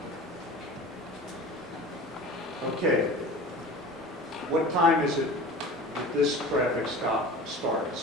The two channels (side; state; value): both; normal; correlation 0.37